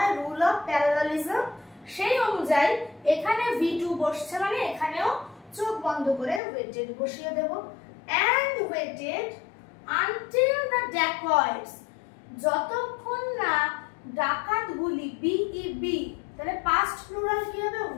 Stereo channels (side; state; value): right; drops out; at 6.4 s